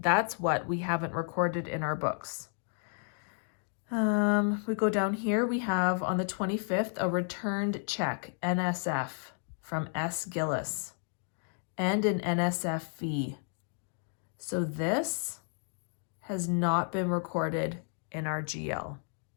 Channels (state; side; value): silent; right; 55 dB below the other